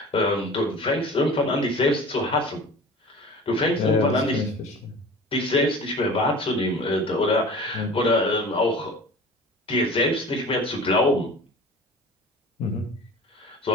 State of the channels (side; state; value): both; normal; correlation 0.40